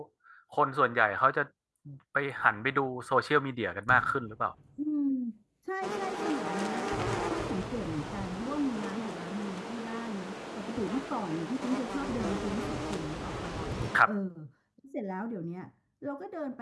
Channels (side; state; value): both; identical; correlation 1.00